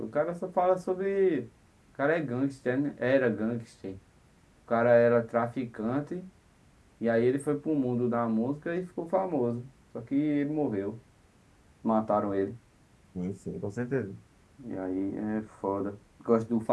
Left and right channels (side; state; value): both; identical; correlation 1.00